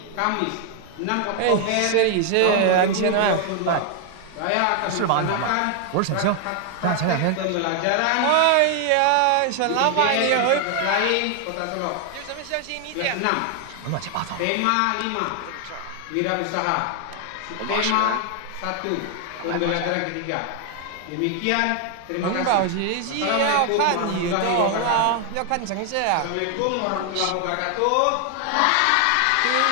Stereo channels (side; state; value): both; different; correlation 0.00